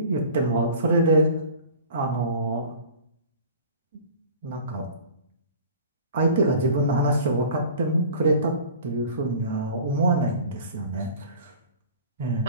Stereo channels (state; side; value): inverted; both; correlation -0.42